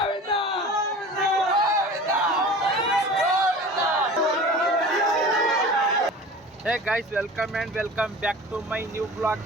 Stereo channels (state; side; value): normal; both; correlation 0.39